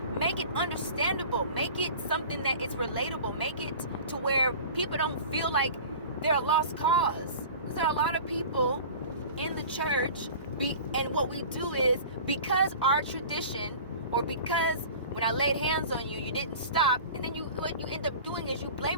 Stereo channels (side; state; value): both; inverted; correlation -0.40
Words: make it understandable, make it something that is relatable, make it to where people don't feel like they're a lost cause. Because there are a lot of people in the church, and what we do is, because our tradition, or because when I laid hands on you, you didn't stop, and then what you end up doing is you